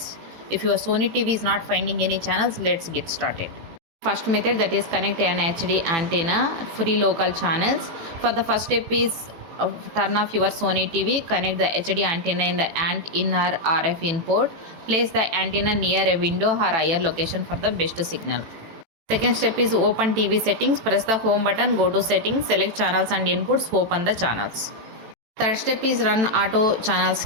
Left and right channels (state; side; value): late; left; 18 ms